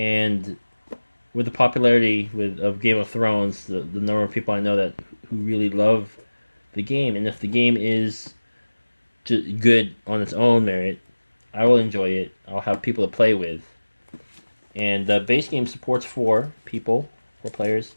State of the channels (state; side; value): inverted; both; correlation -1.00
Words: with the popularity of Game of Thrones, the number of people I know that who really love the game, and if the game is good on its own merit, I will enjoy it. I'll have people to play with, and the base game supports four players,